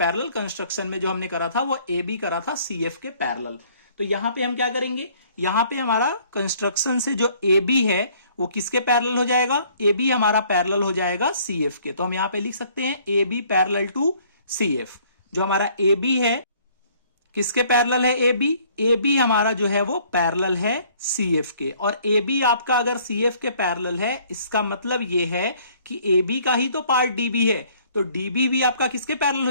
कंस्ट्रक्शन में जो हमने करा था वो एबी करा था सीएफ के पैरेलल। तो यहां पे हम क्या करेंगे, यहां पे हमारा कंस्ट्रक्शन से जो एबी है वो किसके पैरेलल हो जाएगा, एबी हमारा पैरेलल हो जाएगा सीएफ के। तो हम यहां पे लिख सकते हैं एबी पैरेलल टू सीएफ। जो हमारा एबी है किसके पैरेलल है, एबी, एबी हमारा जो है वो पैरेलल है सीएफ के। और एबी आपका अगर सीएफ के पैरेलल है इसका मतलब ये है कि एबी का ही तो पार्ट डीबी है, तो डीबी भी आपका किसके पैरेलल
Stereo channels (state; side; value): inverted; both; correlation -0.59